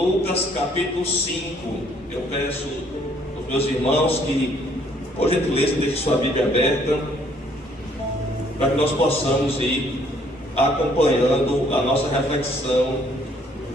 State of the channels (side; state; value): both; normal; correlation 0.64